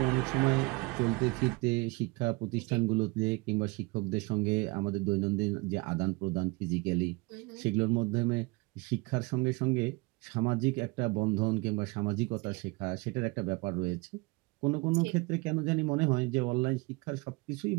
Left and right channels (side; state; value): left; quieter; 26.5 dB